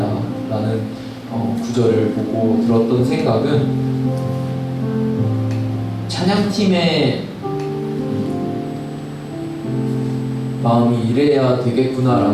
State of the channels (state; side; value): identical; both; correlation 1.00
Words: 라는 구절을 보고 들었던 생각은 찬양팀의 마음이 이래야